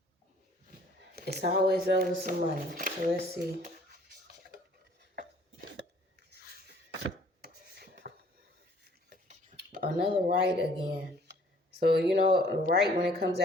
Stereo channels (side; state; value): both; normal; correlation 0.57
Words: It's always over some money. So let's see. Another rite again. So, rite when it comes